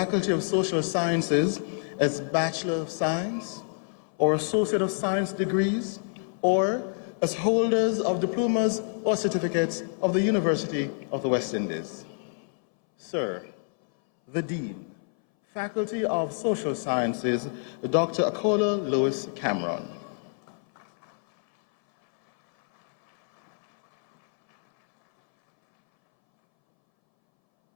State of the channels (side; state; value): right; silent; 60 dB below the other